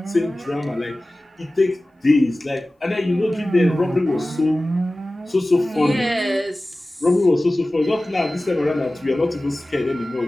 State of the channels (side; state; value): both; normal; correlation 0.97